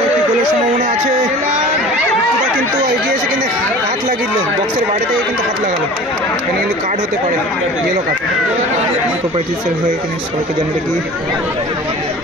একটি গোলের সম্ভাবনা আছে। বিট্টুদা কিন্তু এগিয়ে এসে কিন্তু হাত লাগিয়ে দিল, বক্সের বাইরে থেকে কিন্তু হাত লাগালো। এখানে কিন্তু কার্ড হতে পারে, ইয়েলো কার্ড। প্রোপাইটিসের হয়ে কিন্তু সবাইকে জানিয়ে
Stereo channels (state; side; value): normal; both; correlation 0.41